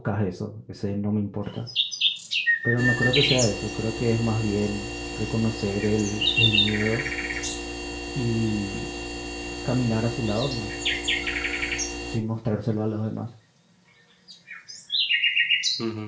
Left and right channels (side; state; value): both; identical; correlation 1.00